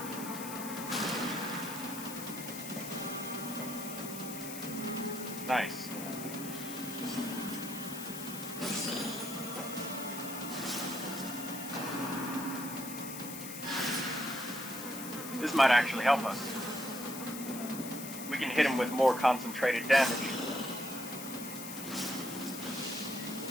Nice. This might actually help us. We can hit him with more concentrated damage.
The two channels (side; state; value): left; noise; hiss, 9 dB below the sound